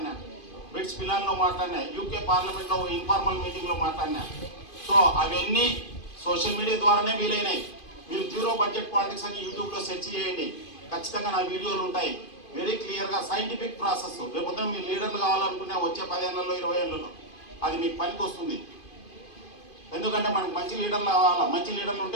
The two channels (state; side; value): late; right; 2.5 ms